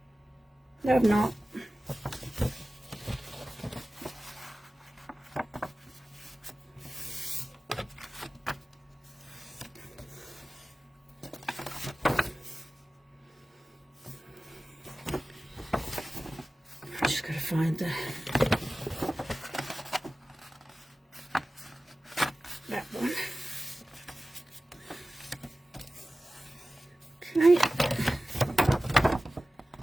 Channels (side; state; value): both; normal; correlation 0.96